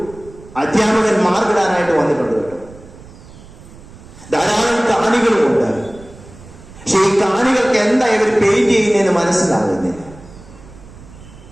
അധ്യാപകൻ മാർക്കിടാനായിട്ട് വന്നിട്ടുണ്ട് കേട്ടോ. ധാരാളം കാണികളുമുണ്ട്. പക്ഷെ ഈ കാണികൾക്ക് എന്താ ഇവർ പെയിന്റ് ചെയ്യുന്നതെന്ന് മനസ്സിലാകുന്നില്ല.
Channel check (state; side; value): noise; right; rumble, 20 dB below the sound